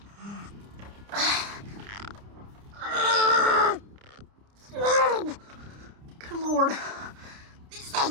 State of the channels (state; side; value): late; left; 30 ms